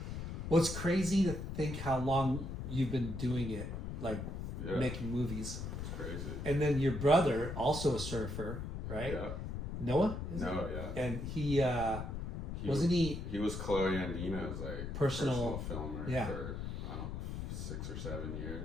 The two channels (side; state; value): left; noise; rumble, 5 dB below the sound